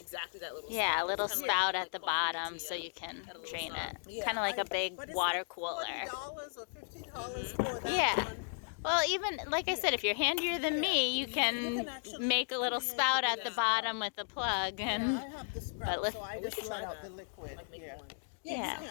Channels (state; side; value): silent; right; digital silence